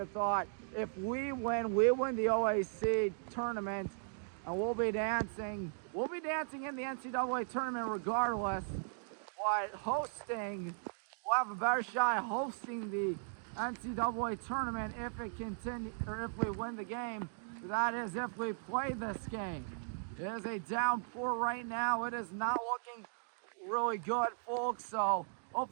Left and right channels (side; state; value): left; silent; digital silence